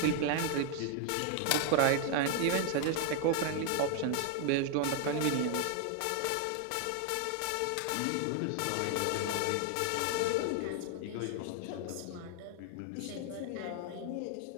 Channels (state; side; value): different; both; correlation 0.00